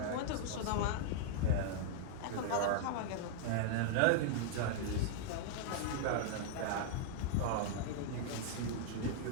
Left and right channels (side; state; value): both; different; correlation -0.01